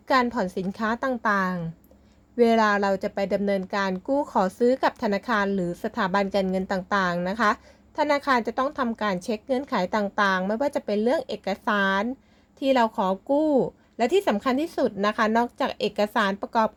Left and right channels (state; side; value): identical; both; correlation 1.00